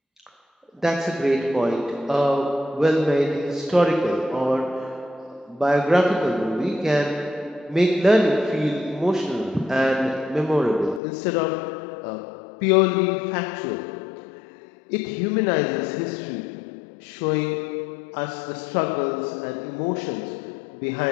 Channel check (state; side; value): drops out; right; at 11.0 s